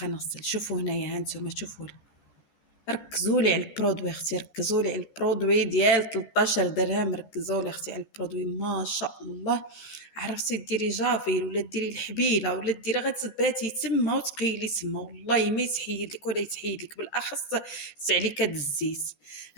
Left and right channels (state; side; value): late; right; 13 ms